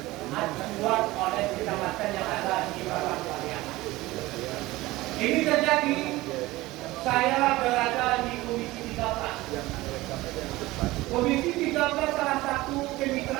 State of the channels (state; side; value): quieter; left; 19.0 dB